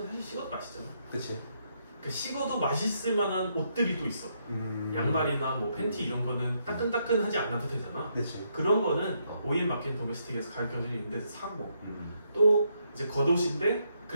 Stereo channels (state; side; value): inverted; both; correlation -0.76